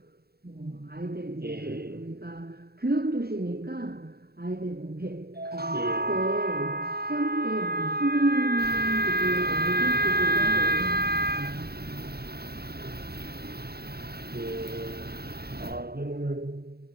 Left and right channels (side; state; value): left; late; 0.46 ms